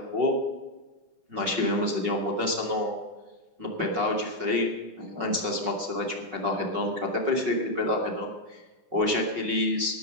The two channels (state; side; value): late; left; 5.4 ms